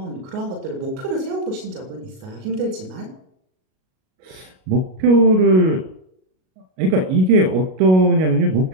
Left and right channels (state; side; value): late; left; 38 ms